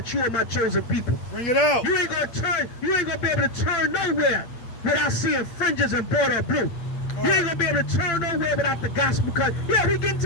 you are my chosen people. Bring it out. You ain't gonna be able to turn nowhere without seeing fringes and border of blue. You ain't gonna be able to turn nowhere without the gospel, because yeah, we getting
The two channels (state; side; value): late; right; 8.8 ms